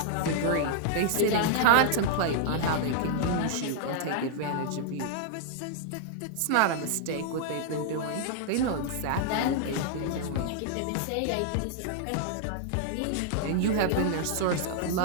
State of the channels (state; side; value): different; both; correlation -0.01